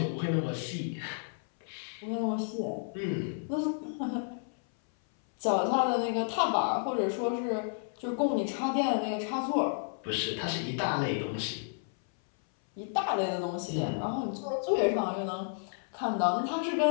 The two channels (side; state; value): right; silent; 57 dB below the other